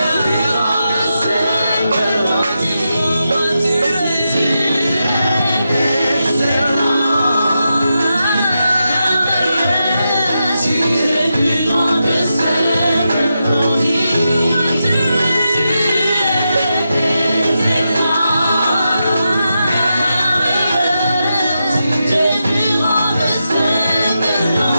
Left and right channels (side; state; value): both; inverted; correlation -0.87